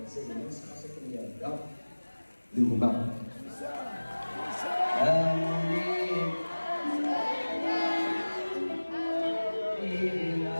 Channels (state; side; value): inverted; both; correlation -1.00